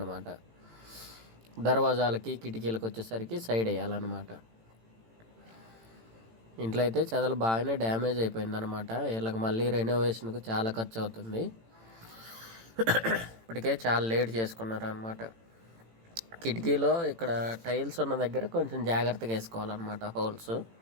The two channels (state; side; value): late; left; 18 ms